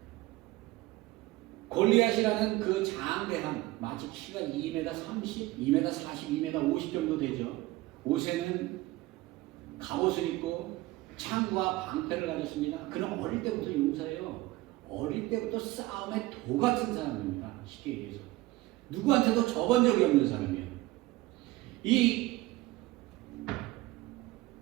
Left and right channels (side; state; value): left; quieter; 18.6 dB